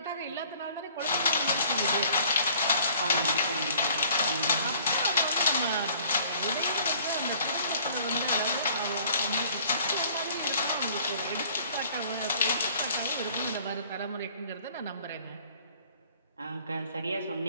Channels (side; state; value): both; inverted; correlation -0.54